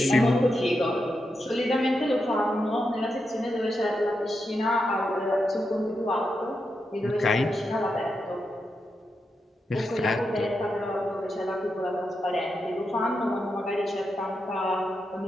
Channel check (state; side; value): normal; both; correlation 0.86